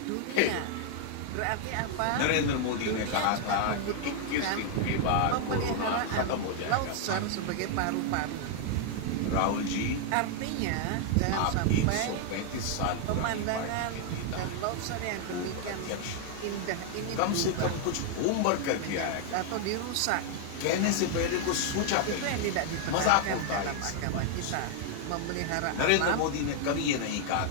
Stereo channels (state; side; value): different; both; correlation 0.00